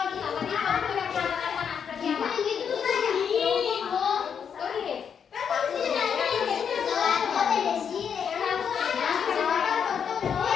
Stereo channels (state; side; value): quieter; right; 7.3 dB